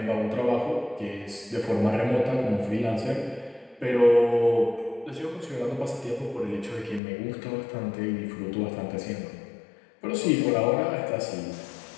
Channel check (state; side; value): drops out; right; at 7.0 s